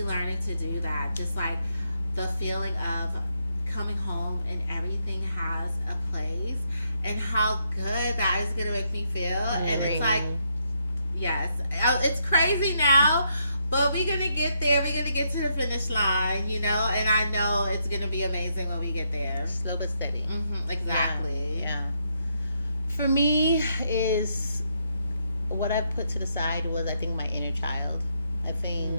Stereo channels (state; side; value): inverted; both; correlation -0.77